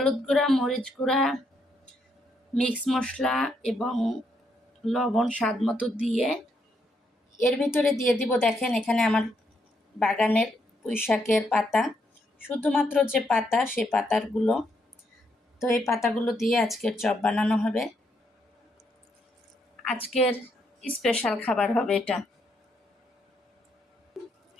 গুঁড়া, মরিচ গুঁড়া, মিক্স মশলা এবং লবণ স্বাদ মতো দিয়ে এর ভিতরে দিয়ে দিব। দেখেন এখানে আমার বাগানের পুঁইশাকের পাতা, শুধুমাত্র যে পাতা সে পাতাগুলো। তো এই পাতাগুলো দিয়ে আজকের চপ বানানো হবে। আজকের স্পেশাল খাবার হবে এটা।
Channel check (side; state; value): both; normal; correlation 0.76